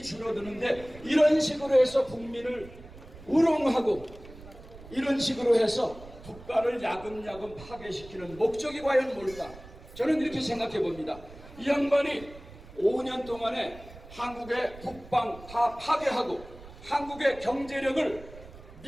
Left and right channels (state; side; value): noise; right; rumble, 18 dB below the sound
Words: 줄어드는데 이런 식으로 해서 국민을 우롱하고 이런 식으로 해서 국가를 야금야금 파괴시키는 목적이 과연 뭘까? 저는 이렇게 생각해 봅니다. 이 양반이 5년 동안에 한국의 국방 다 파괴하고 한국의 경제력을